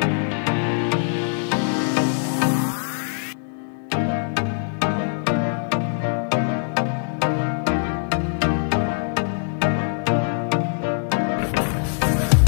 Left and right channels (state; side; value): silent; right; digital silence